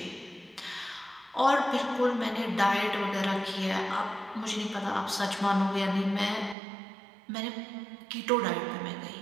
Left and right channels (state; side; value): drops out; left; at 6.6 s